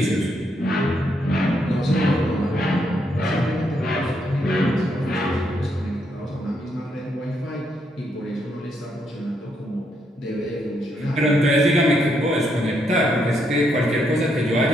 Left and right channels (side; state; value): both; normal; correlation 0.76